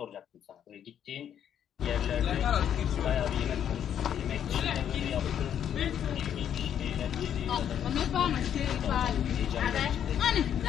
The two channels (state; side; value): quieter; right; 9.4 dB